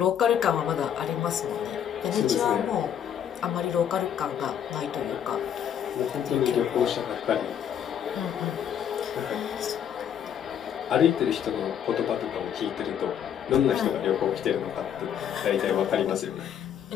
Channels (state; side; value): quieter; right; 9.1 dB